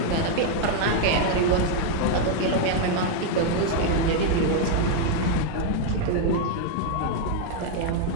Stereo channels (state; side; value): different; both; correlation 0.01